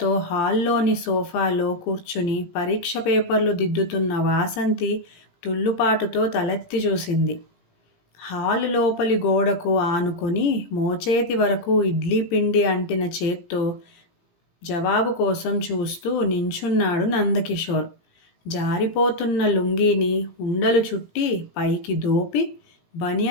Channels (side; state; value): right; late; 17 ms